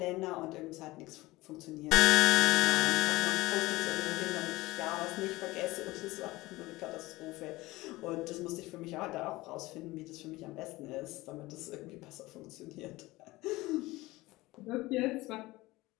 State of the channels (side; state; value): right; quieter; 19.8 dB